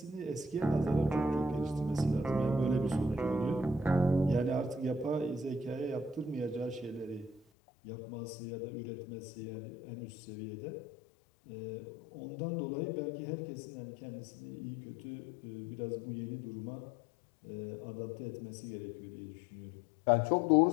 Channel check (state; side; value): drops out; right; at 7.4 s